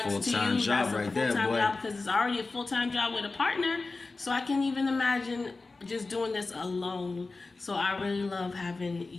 to you. full-time job That's a right there, full-time boy. job because it's already a full-time job with a partner. So I can even imagine just doing this alone. So I really love having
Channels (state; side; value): quieter; right; 3.6 dB